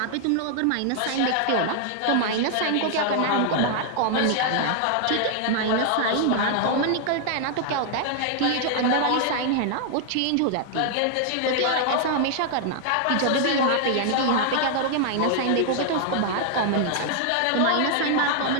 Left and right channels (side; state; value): both; different; correlation 0.00